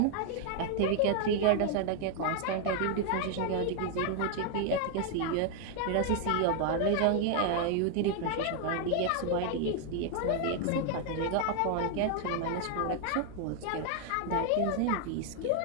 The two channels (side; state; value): both; different; correlation 0.00